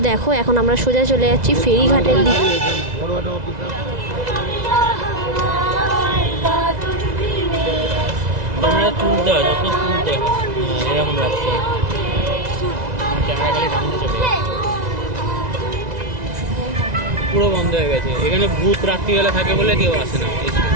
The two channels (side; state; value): left; late; 2.0 ms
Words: দেখো এখন আমরা সোজা চলে যাচ্ছি ফেরিঘাটের দিকে। পুরো বন্ধ হয়ে গেছে। এখানে ভূত রাত্রিবেলা থাকে বলে কেউ আসে না। এই